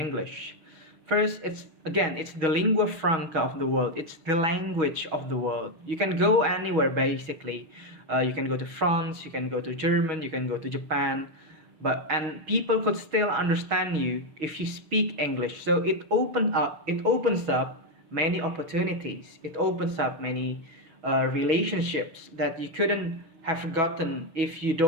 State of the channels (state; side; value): late; left; 6.3 ms